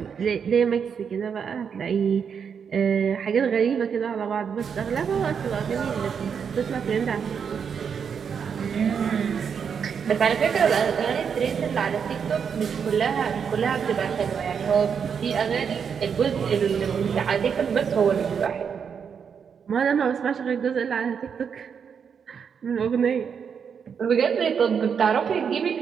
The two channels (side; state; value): left; quieter; 6.9 dB